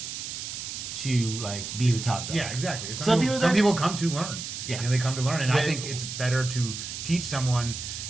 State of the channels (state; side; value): noise; right; hiss, 7 dB below the sound